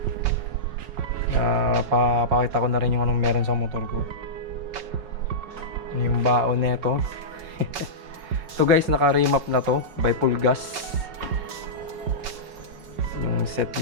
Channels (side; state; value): left; late; 5.2 ms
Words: Papakita ko na rin yung anong meron sa motor ko. Yung baon nito. Ito guys, naka-remap na to by Pulgas. Yung set